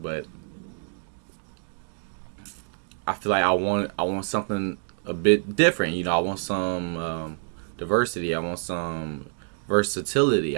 but I feel like I want something a bit different. You know, I want some diversity. I want some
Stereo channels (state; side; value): silent; left; digital silence